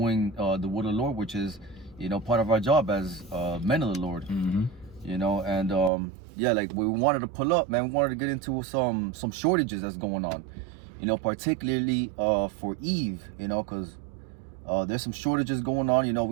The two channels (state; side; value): drops out; left; at 5.9 s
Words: the word of the Lord, which is, you know, part of our job as men of the Lord. You know, and yeah, like we wanted to pull up, man, we wanted to get into some shortages that's going on, you know, particularly for Eve, you know, because there's some shortages going on. You know,